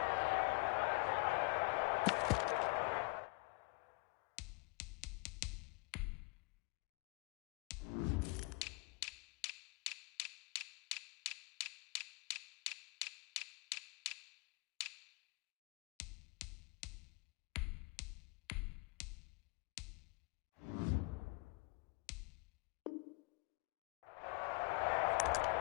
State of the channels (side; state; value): right; quieter; 27.2 dB